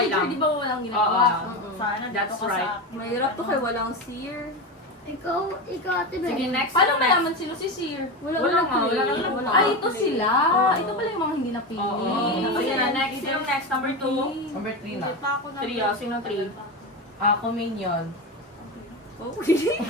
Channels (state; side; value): normal; both; correlation 0.19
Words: villager, lang. di ba walang ginagawa? Oo. Sana dito That's ka right. sa akin. Mahirap to kay walang seer. Ikaw, Ate Bel. Sige, next. Paano Next. malaman sino si Seer? Wala Wala walang nga, play. wala nga. Wala Ay, nga ito play. sila. Oo. Ito pala yung mga hindi napili. Oo. Ayan na, next. Sino next? Number 2. Number 3 na. Hindi pa ako na. 3, sino 3? Ako minion. Okay.